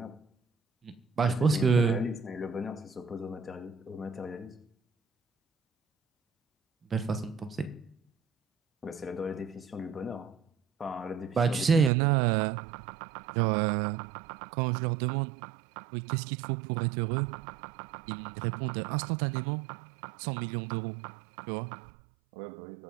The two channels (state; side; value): drops out; left; at 11.9 s